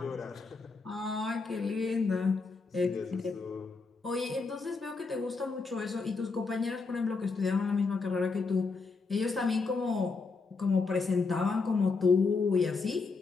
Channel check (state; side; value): quieter; right; 4.3 dB